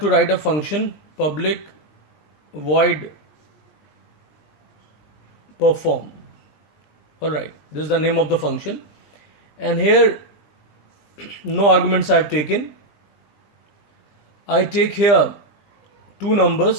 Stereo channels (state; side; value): late; right; 20 ms